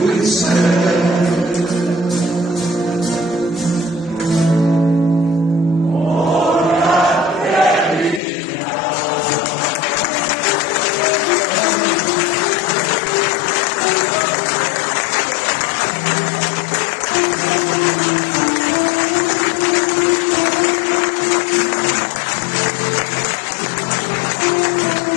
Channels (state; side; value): drops out; right; at 8.2 s